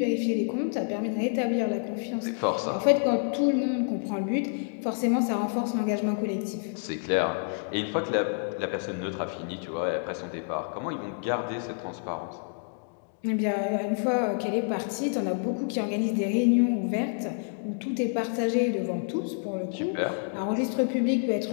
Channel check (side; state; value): right; silent; 59 dB below the other